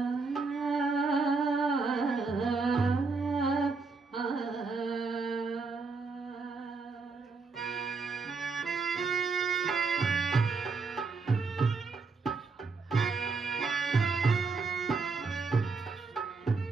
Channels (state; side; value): quieter; left; 4.3 dB